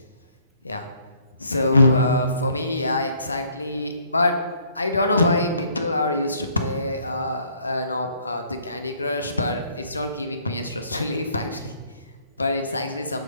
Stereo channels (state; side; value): inverted; both; correlation -0.63